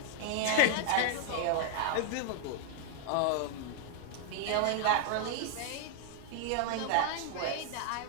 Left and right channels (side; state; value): both; different; correlation -0.01